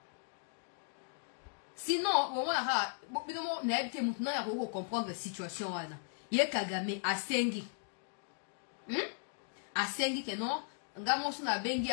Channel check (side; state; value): right; silent; digital silence